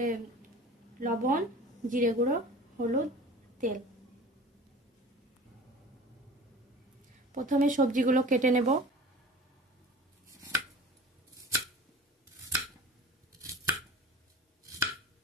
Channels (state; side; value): normal; both; correlation 0.39